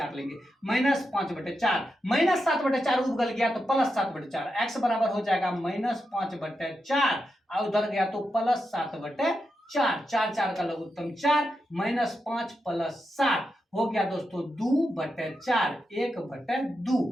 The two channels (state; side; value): normal; both; correlation 0.87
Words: लेंगे, माइनस 5/4, माइनस 7/4 उगल गया तो प्लस 7/4, x बराबर हो जाएगा माइनस 5/4, और उधर गया तो प्लस 7/4, 4 4 का लघुत्तम 4, माइनस 5 प्लस 7 हो गया दोस्तों 2/4, 1/2,